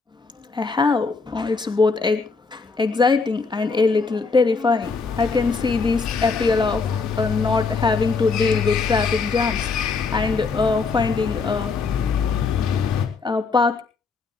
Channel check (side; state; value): right; quieter; 4.5 dB